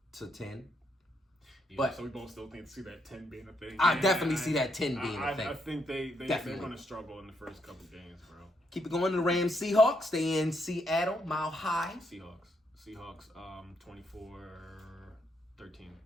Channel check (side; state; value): both; normal; correlation 0.77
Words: Yeah, but so we both still see that 10 being a thing. I definitely see that 10 being a thing. I think they're going to struggle in the first couple games, bro. Keep it going to the Rams Seahawks. They in Seattle, Mile High. Seahawks, 24-13.